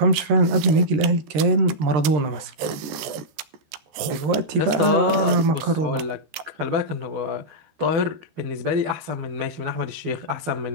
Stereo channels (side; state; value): left; late; 13 ms